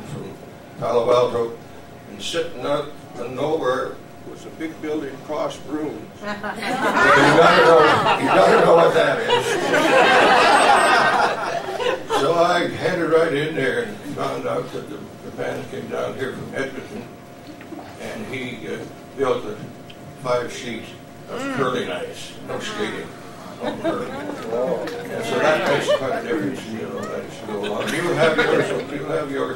from Palo Alto, and sitting out of nowhere was a big building across rooms. You gotta know what that is. So I headed right in there and found out that the man came down here from Edmonton, and he built a 5-sheet of curling ice, no skating, no curling. And so that makes quite a difference, you know, that should go along. You'll have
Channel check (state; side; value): identical; both; correlation 1.00